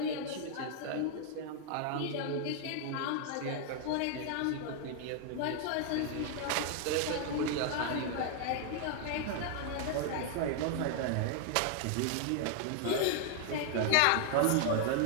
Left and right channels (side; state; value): both; different; correlation 0.00